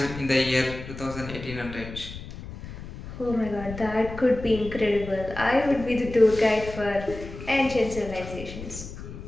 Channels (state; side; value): noise; left; rumble, 12 dB below the sound